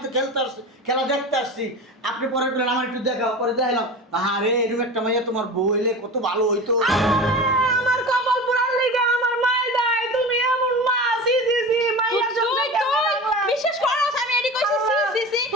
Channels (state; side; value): normal; both; correlation 0.31